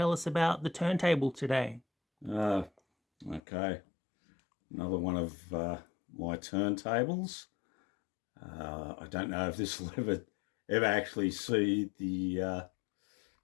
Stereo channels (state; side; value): drops out; right; at 3.4 s